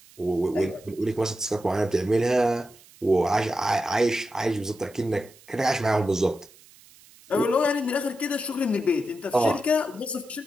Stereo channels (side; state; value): right; noise; hiss, 25 dB below the sound